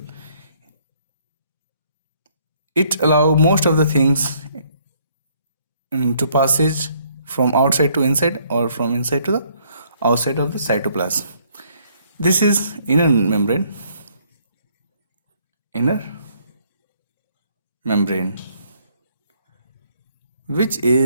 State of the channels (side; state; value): both; inverted; correlation -0.66